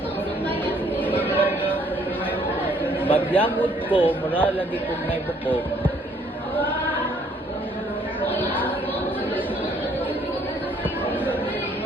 Magyamod ko, mura lagi kong may bukog.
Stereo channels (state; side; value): normal; both; correlation 0.64